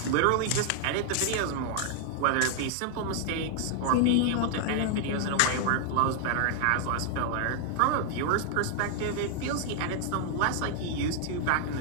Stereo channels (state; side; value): different; both; correlation 0.00